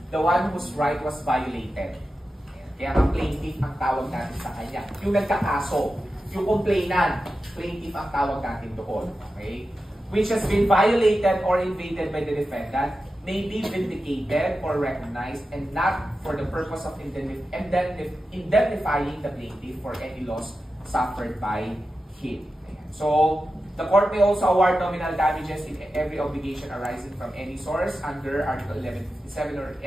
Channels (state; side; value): normal; both; correlation 0.92